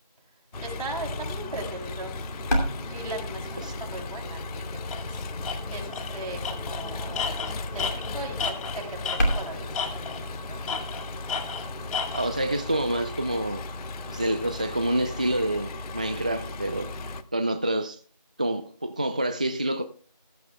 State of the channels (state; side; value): inverted; both; correlation -0.62